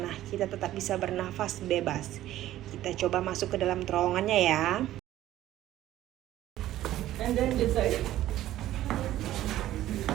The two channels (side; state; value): left; quieter; 13.9 dB